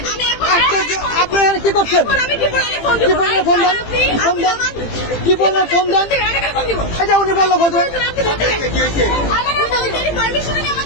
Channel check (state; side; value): late; right; 18 ms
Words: আমি এখন আশ্চর্য। আপনি এখানে কি করছেন? এখন আমি কি বলে ফোন কি দিব? বললেন ফোন দেন? ফোন দেন। কি বললেন ফোন দেন? ফোন দিব। এই যে উনি বললো ফোন দেন। আপনি বলতে কি হইছে? আমার আমাদের পারমিশন নিয়ে